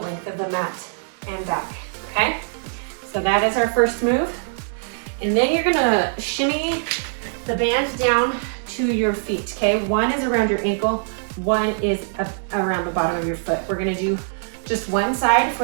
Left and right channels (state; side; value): silent; left; digital silence